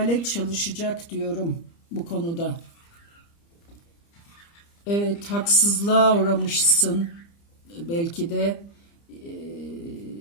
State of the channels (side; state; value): right; late; 30 ms